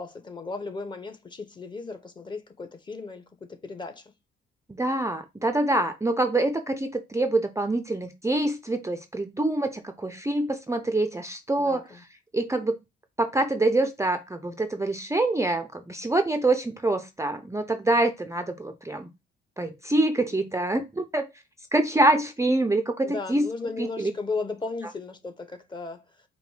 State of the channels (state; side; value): normal; both; correlation 0.73